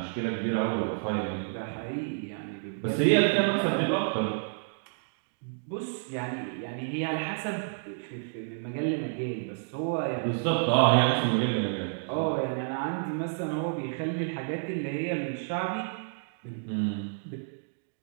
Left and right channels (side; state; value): left; silent; digital silence